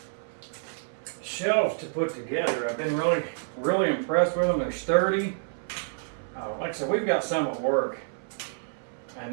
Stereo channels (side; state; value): left; silent; 59 dB below the other